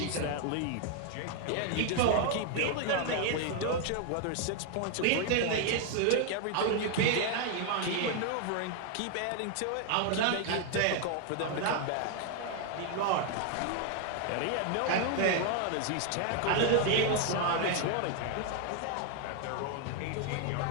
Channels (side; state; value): both; different; correlation 0.00